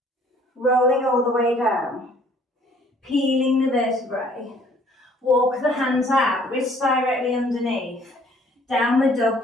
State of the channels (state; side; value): normal; both; correlation 0.59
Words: Rolling all the way down. Peeling the vertebrae. Walk the hands out, wrists directly underneath. Downward